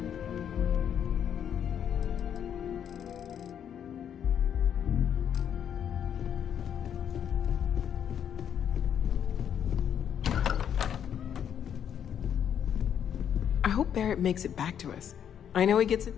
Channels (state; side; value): quieter; right; 8.9 dB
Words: I hope Barrett makes it back to us. I know he gets it.